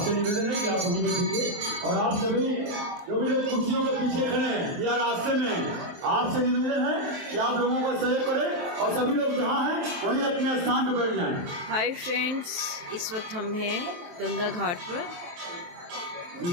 निवेदन है कि आप वहीं बैठिए। और आप सभी जो भी लोग कुर्सियों के पीछे खड़े हैं या रास्ते में, आपसे निवेदन है कि आप लोगों को सहयोग करें और सभी लोग जहाँ हैं वहीं अपने स्थान पर बैठ जाएं। हाय फ्रेंड्स, इस वक्त हम हैं गंगा घाट पर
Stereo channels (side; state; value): left; late; 23 ms